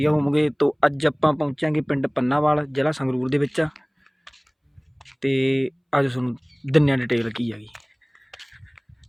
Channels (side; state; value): both; identical; correlation 1.00